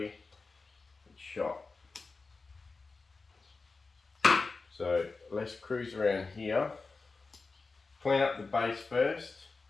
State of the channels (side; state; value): right; quieter; 4.0 dB